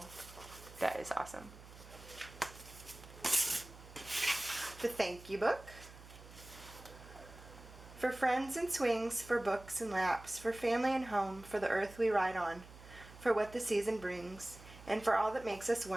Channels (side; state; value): right; noise; hum, 18 dB below the sound